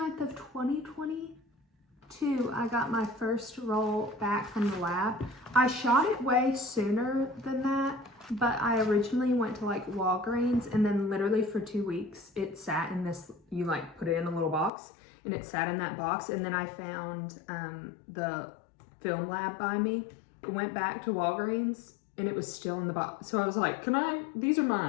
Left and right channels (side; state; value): right; drops out; at 14.7 s